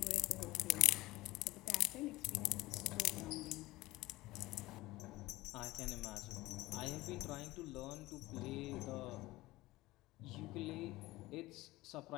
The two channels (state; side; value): quieter; right; 18.9 dB